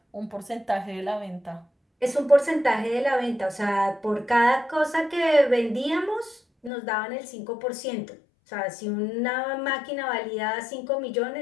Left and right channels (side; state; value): right; drops out; at 6.7 s